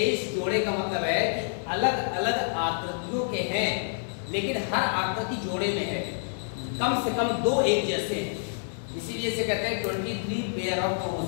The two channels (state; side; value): silent; right; digital silence